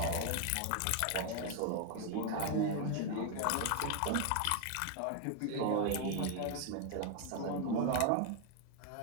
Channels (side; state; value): both; different; correlation 0.00